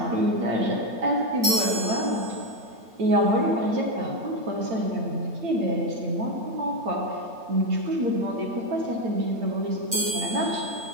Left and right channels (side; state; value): left; late; 8.9 ms